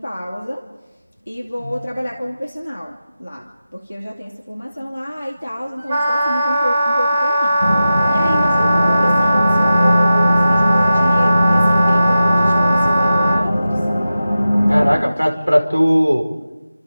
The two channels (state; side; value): inverted; both; correlation -0.93